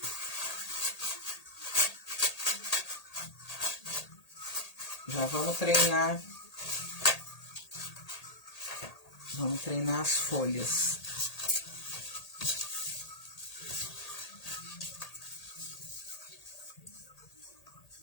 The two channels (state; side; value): late; right; 1.8 ms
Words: Já vamos treinar. Vamos treinar as folhas.